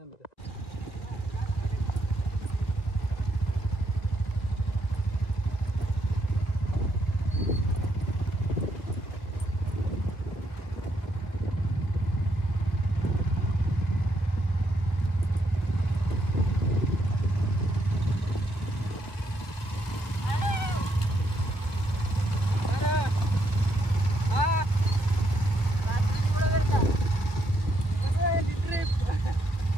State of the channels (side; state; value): right; late; 1.8 ms